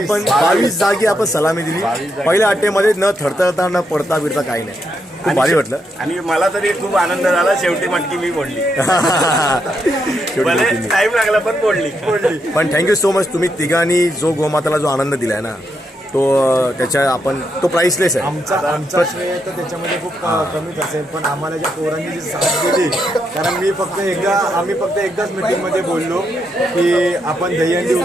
22 जागी आपण सलामी दिली. पहिल्या अटेमध्ये न थरथरता न पडता बिडता काही नाही. खूप भारी वाटलं. आणि मला तरी खूप आनंद झाला. शेवटी मटकी मी फोडली. टाइम लागला पण फोडली. पण थँक्यू सो मच. तुम्ही तिघांनी जो गोमाताला जो आनंद दिलाय ना, तो त्याच्या आपण तो प्राइसलेस आहे. आमचा श्रेय तर त्याच्यामध्ये खूप कमीच असेल, पण आम्हाला ज्या पोरांनी जी साथ दिली, कारण आम्ही फक्त एकदाच मीटिंगमध्ये बोललो की आपण दहीहंडी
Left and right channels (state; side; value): normal; both; correlation 0.80